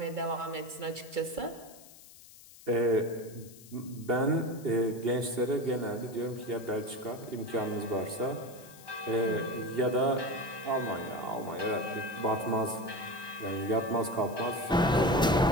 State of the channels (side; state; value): left; noise; hiss, 20 dB below the sound